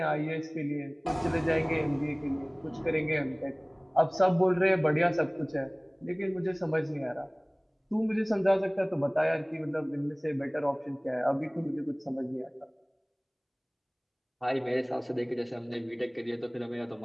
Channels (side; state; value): both; identical; correlation 1.00